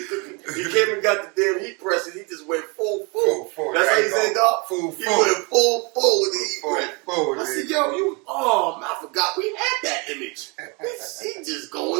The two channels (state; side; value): quieter; left; 30.5 dB